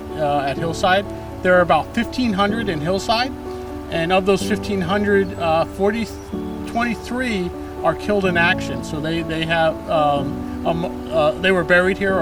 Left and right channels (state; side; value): identical; both; correlation 1.00